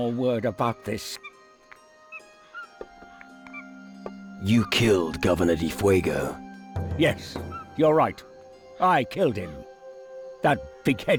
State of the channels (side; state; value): both; identical; correlation 1.00